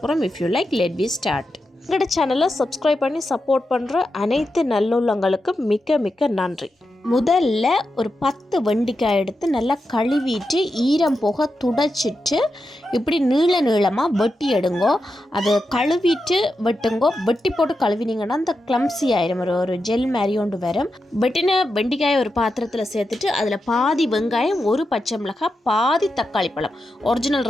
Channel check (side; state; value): both; normal; correlation 0.88